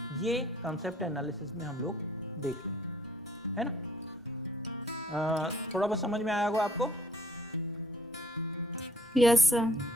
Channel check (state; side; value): normal; both; correlation 0.60